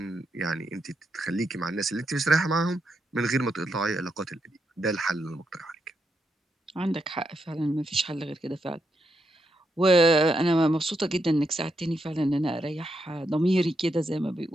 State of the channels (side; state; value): both; normal; correlation 0.82